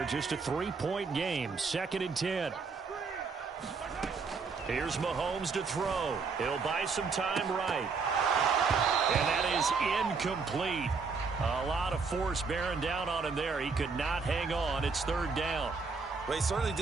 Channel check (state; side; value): quieter; left; 4.8 dB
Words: Just a 3-point game. 2nd and 10. Here's Mahomes to throw. He'll buy some time right. And that is incomplete. A lot of force bearing down on him there. He could not hang on. It's third down. Well, he certainly